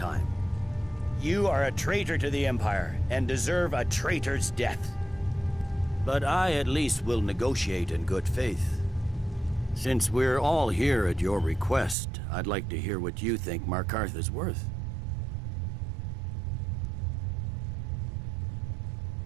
You are a traitor to the Empire, and deserve a traitor's death. But I at least will negotiate in good faith. Since we're all here at your request, I'd like to hear what you think Markarth is worth.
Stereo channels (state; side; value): drops out; left; at 12.0 s